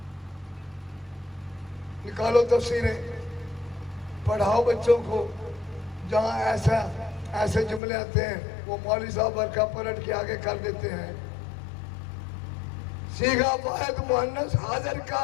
نکالو تفسیریں، پڑھاؤ بچوں کو. جہاں ایسے جملے آتے ہیں وہ مولوی صاحب ورقہ پلٹ کے آگے کر دیتے ہیں. صیغہ واحد مؤنث حاضر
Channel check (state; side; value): drops out; right; at 7.8 s